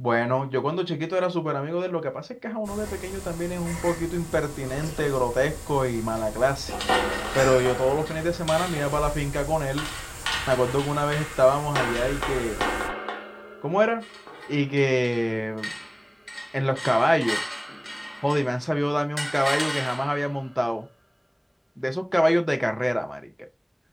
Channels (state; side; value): identical; both; correlation 1.00